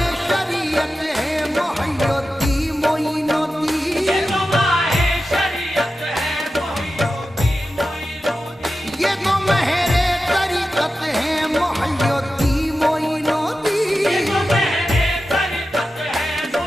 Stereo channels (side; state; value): both; normal; correlation 0.92